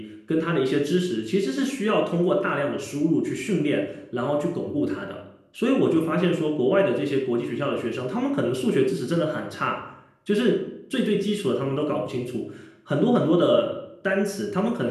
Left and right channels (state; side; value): identical; both; correlation 1.00